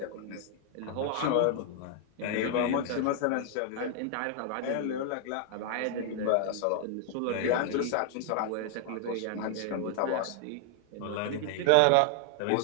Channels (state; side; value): different; both; correlation 0.00